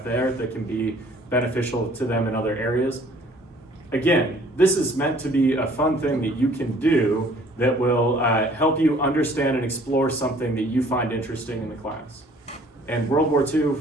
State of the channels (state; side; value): normal; both; correlation 0.56